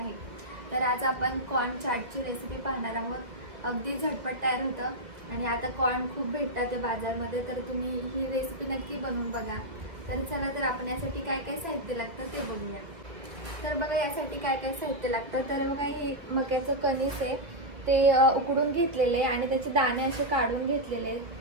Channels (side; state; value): left; late; 2.3 ms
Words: तर आज आपण कॉर्न चाटची रेसिपी पाहणार आहोत। अगदी झटपट तयार होतं आणि आता कॉर्न खूप भेटतात ते बाजारमध्ये, तर तुम्ही ही रेसिपी नक्की बनवून बघा। तर चला तर आपण यासाठी काय काय साहित्य लागतं ते बघूया। तर बघा यासाठी काय काय साहित्य लागतं। तर बघा हे मक्याचं कणीस आहे, ते उकडून घेतलेले आणि त्याचे दाणे असे काढून घेतलेले,